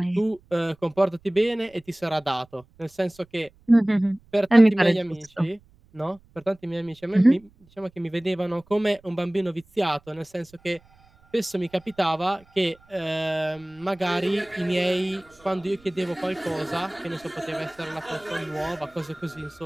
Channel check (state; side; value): noise; right; rumble, 29 dB below the sound